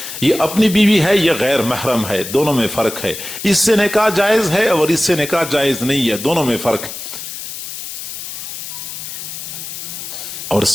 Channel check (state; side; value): noise; left; hiss, 9 dB below the sound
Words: یہ اپنی بیوی ہے، یہ غیر محرم ہے، دونوں میں فرق ہے. اس سے نکاح جائز ہے اور اس سے نکاح جائز نہیں ہے، دونوں میں فرق ہے. اور